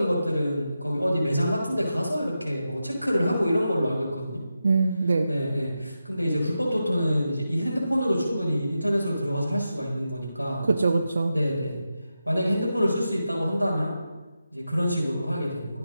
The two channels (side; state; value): both; inverted; correlation -0.89